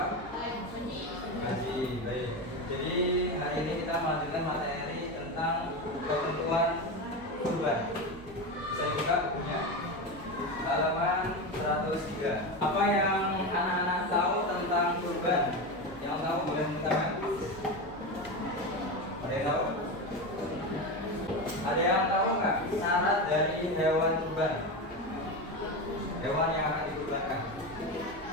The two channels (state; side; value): noise; right; hum, 20 dB below the sound